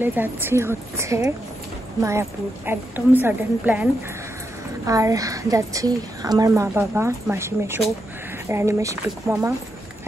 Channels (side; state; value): both; normal; correlation 0.84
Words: যাচ্ছি হচ্ছে মায়াপুর, একদম সাডেন প্ল্যান। আর যাচ্ছি আমার মা বাবা, মাসি মেশো, রানী মাসি, পিকু মামা